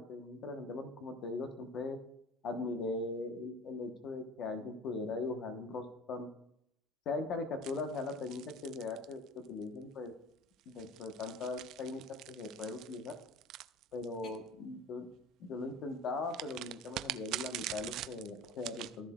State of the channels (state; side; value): normal; both; correlation 0.40